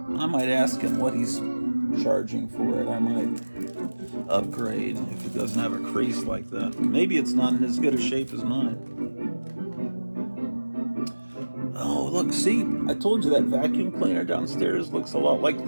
I might ask him what he's charging for it. I might upgrade if it doesn't have a crease like that. Maybe it's not in as good a shape as mine. Oh, look, see, I told you that vacuum cleaner downstairs looks a lot like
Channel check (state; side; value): inverted; both; correlation -1.00